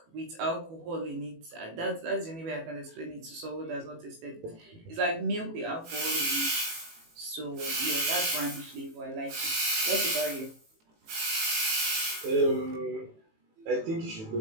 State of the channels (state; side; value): late; left; 18 ms